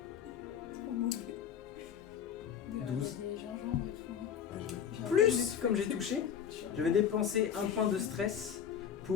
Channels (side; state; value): right; quieter; 8.3 dB